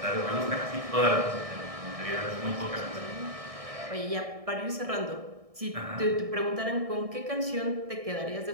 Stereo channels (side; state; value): left; late; 1.6 ms